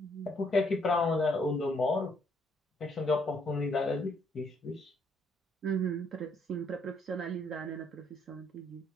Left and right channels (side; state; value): both; normal; correlation 0.69